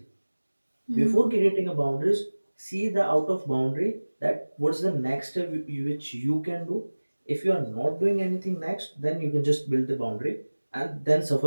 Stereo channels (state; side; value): inverted; both; correlation -1.00